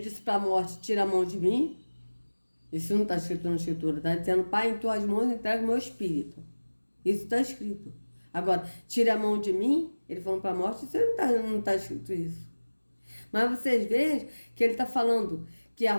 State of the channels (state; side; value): inverted; both; correlation -1.00